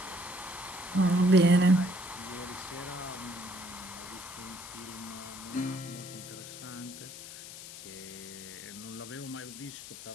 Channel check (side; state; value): left; noise; hiss, 12 dB below the sound